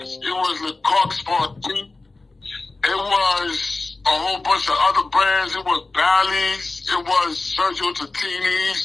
it was Le Coq Sportif, it was a whole bunch of other brands. It was Bally's, it was Sergio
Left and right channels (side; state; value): right; quieter; 3.4 dB